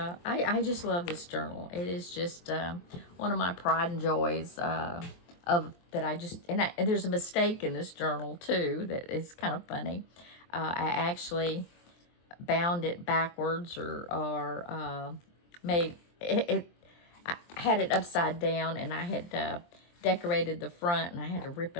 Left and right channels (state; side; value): late; right; 23 ms